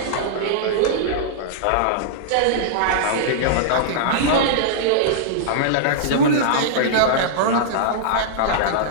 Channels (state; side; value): different; both; correlation -0.02